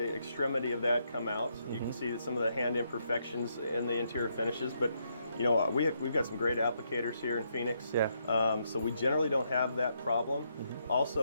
extremity of that come out. You can see some of the hand imperfections in the interior finishes, but we've got some great applicators here in Phoenix, so we generally don't have that problem.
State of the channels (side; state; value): both; inverted; correlation -0.77